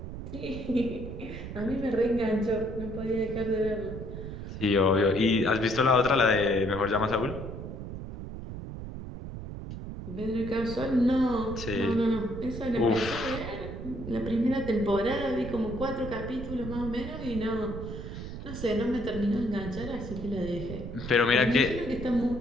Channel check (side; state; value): right; noise; rumble, 8 dB below the sound